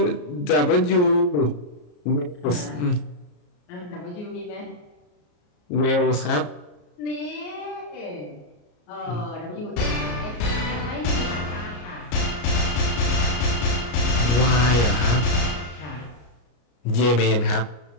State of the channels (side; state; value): right; late; 34 ms